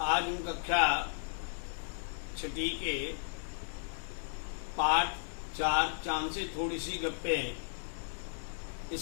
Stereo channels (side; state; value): right; silent; digital silence